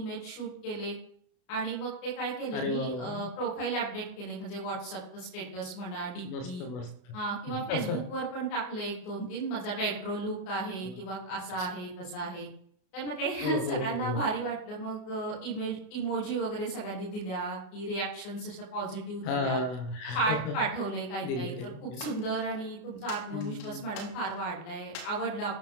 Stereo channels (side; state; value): right; late; 32 ms